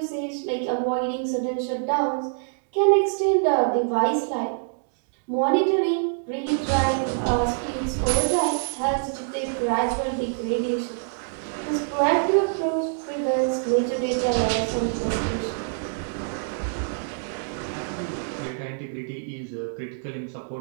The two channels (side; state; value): left; silent; digital silence